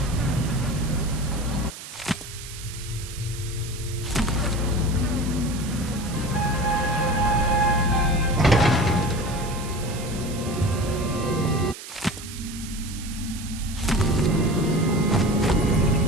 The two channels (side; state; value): right; noise; hiss, 13 dB below the sound